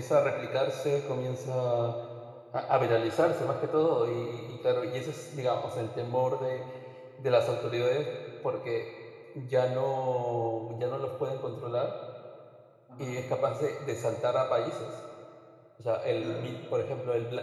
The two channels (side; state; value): both; identical; correlation 1.00